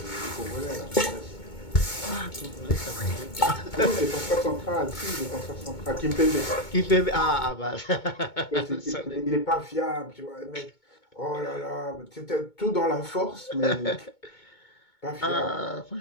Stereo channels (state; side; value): late; right; 2.2 ms